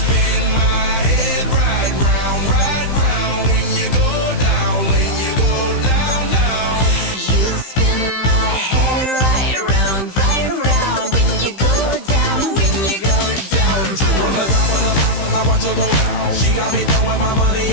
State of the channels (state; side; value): late; right; 15 ms